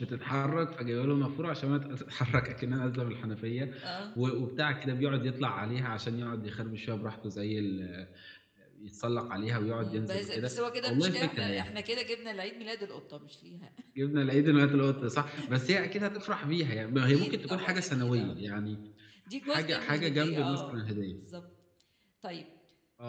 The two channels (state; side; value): identical; both; correlation 1.00